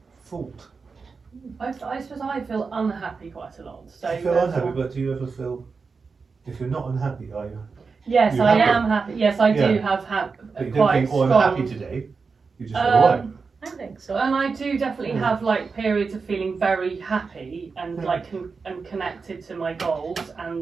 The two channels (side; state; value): left; quieter; 4.8 dB